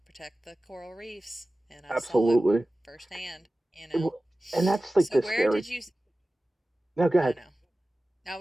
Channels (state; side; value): normal; both; correlation 0.96